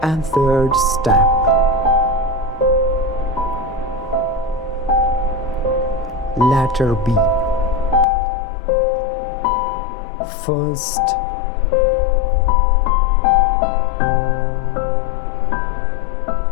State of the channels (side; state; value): right; drops out; at 8.1 s